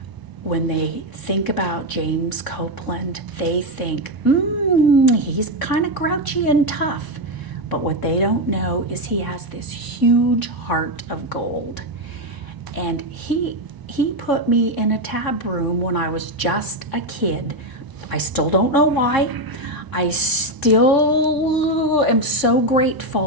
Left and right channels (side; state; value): left; late; 1.0 ms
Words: when they think about James Copeland, they think, he's kind of grouchy and tough. But what they don't know is he has this huge heart of gold. And he put me in a tab room when I was just a kid. I still don't know why. I still am so